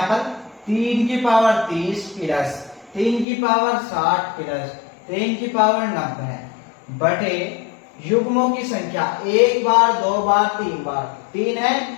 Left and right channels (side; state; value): right; drops out; at 3.2 s